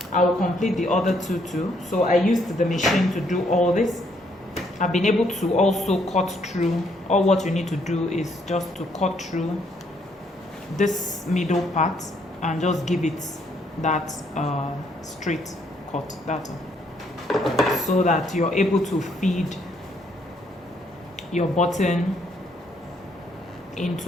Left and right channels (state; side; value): normal; both; correlation 0.70